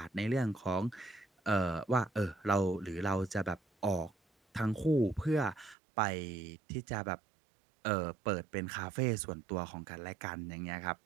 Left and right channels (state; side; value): drops out; left; at 5.8 s